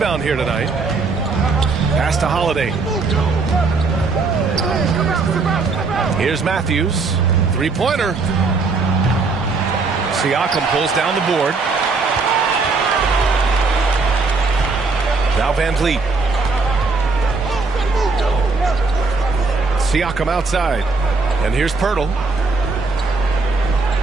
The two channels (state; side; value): quieter; left; 4.1 dB